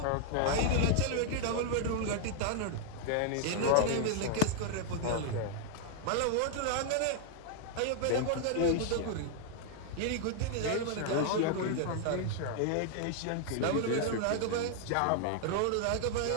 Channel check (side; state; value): both; different; correlation 0.00